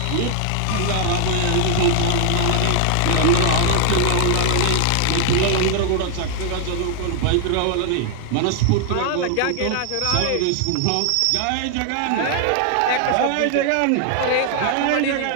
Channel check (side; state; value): both; different; correlation 0.00